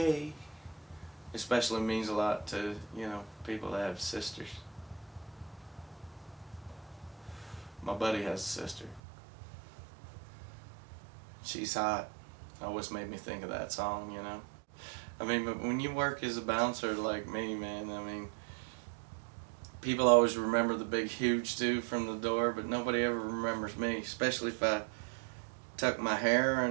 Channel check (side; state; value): left; drops out; at 9.0 s